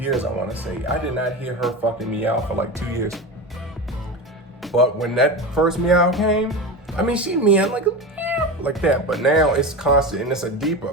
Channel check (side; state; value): both; normal; correlation 0.25